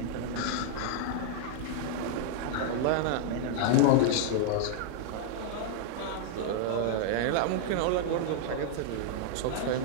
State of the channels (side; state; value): both; different; correlation -0.01